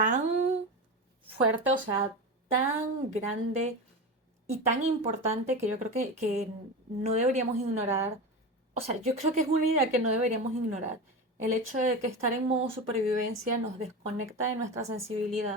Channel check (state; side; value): normal; both; correlation 0.23